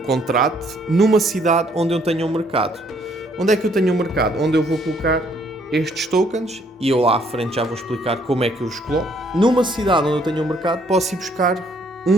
numa cidade onde eu tenha um mercado. Onde é que eu tenho um mercado? Onde eu vou colocar estes tokens, e eu lá à frente já vou explicar como é que eu os coloco. Numa cidade onde eu tenho um mercado, posso ir buscar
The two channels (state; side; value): normal; both; correlation 0.67